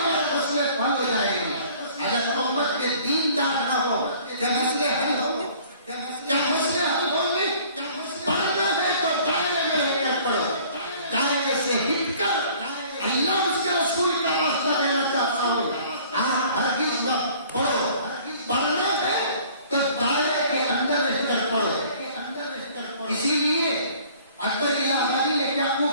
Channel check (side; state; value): both; inverted; correlation -0.52